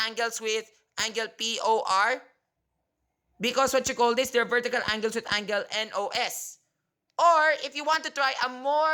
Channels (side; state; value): both; identical; correlation 1.00